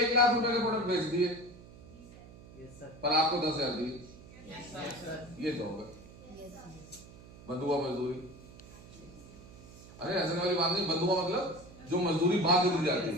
लाख रुपए के प्रोडक्ट बेच दिए, पर आपको 10,000 दिए। ये जॉब है, बंधुआ मजदूरी। अरे हंसने वाली बात नहीं, बंधुआ मतलब जो मजदूरी बांध दी जाती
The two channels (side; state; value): right; noise; hum, 19 dB below the sound